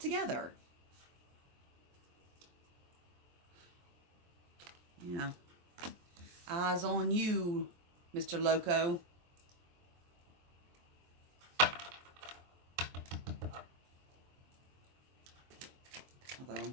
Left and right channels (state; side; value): late; left; 23 ms